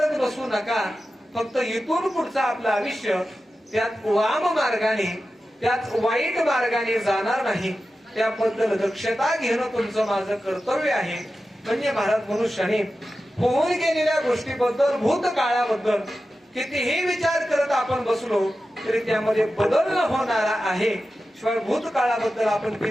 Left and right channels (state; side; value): normal; both; correlation 0.93